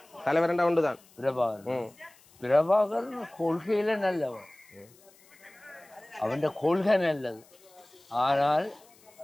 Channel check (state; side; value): noise; left; hiss, 28 dB below the sound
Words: தலைவர்ண்டா ஒன்றுதான் பிரபாகரன். பிரபாகரன் கொள்கையில நல்லவன், அவன் கொள்கை நல்லது. ஆனால்